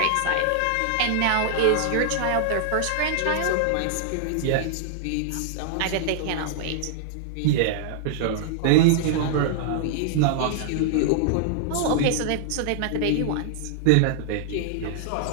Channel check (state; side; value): different; both; correlation -0.01